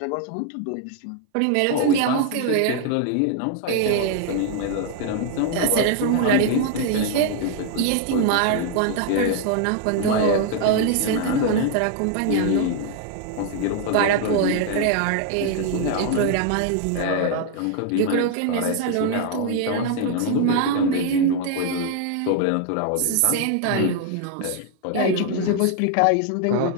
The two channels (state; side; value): different; both; correlation 0.00